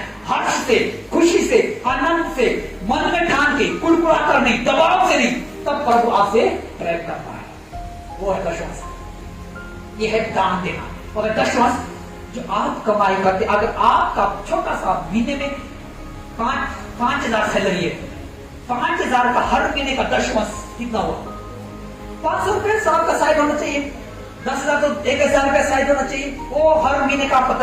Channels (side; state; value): both; identical; correlation 1.00